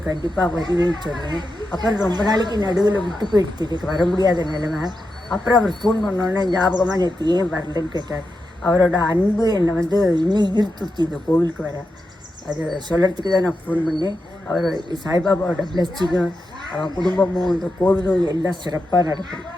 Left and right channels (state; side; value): normal; both; correlation 0.88